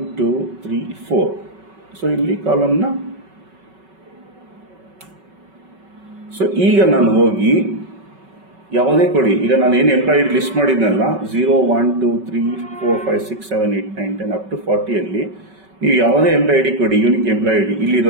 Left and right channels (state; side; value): late; left; 5.3 ms